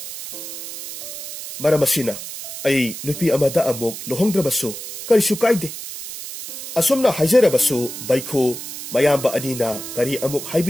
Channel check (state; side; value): noise; right; hiss, 9 dB below the sound